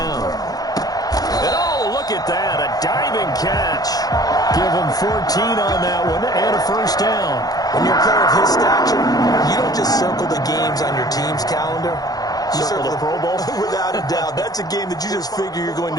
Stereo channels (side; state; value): right; late; 0.18 ms